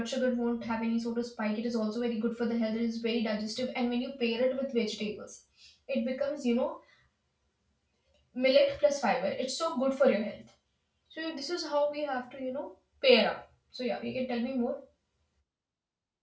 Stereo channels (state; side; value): identical; both; correlation 1.00